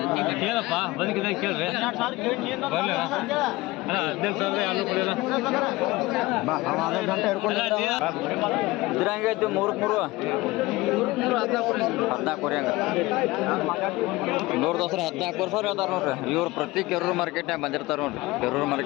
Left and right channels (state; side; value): quieter; right; 20.3 dB